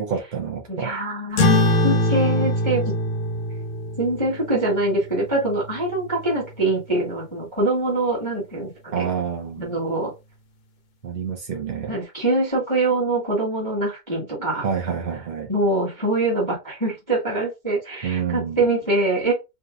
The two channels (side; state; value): right; late; 2.2 ms